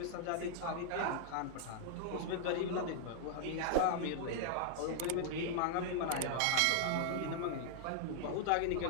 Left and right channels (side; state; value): both; different; correlation -0.01